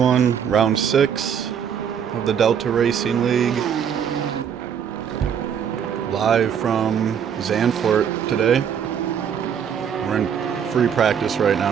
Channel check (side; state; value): left; quieter; 8.0 dB